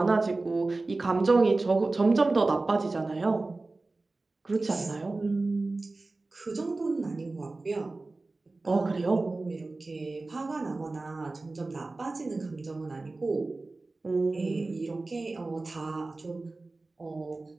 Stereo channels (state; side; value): quieter; left; 3.3 dB